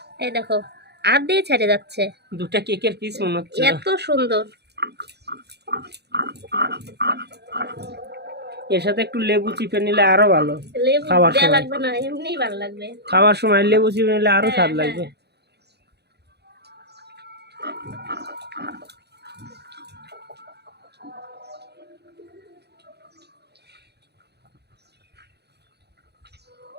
এই দেখো আর দিয়ে ছেড়ে যাচ্ছে, 2টা কেকের পিস মনে হচ্ছে। এত সুন্দর। এর সাথে একটু লেবু চিপে নিলে আরো ভালো। লেবু খাবার দেয়া সময়। লাগবে না, এমনিই ভালো লাগবে। খাওয়ার সময় লেবু চিপে নিলে আরো হ্যাঁ, স্বাদ হ্যাঁ। লাগবে।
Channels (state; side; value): late; left; 0.48 ms